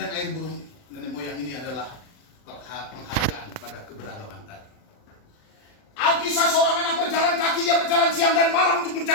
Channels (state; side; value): late; right; 39 ms